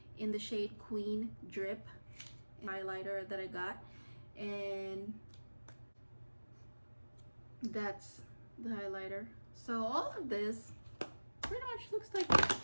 in the shade Queen Drip highlighter that I got, and that's the highlighter. So all of this pretty much looks like,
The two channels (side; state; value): both; inverted; correlation -1.00